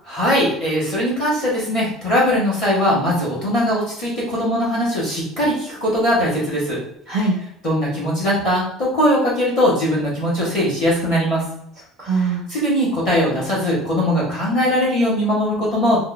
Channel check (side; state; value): both; normal; correlation 0.41